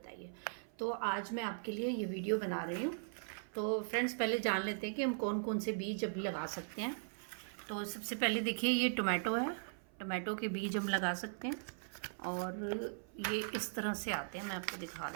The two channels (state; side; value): silent; left; 52 dB below the other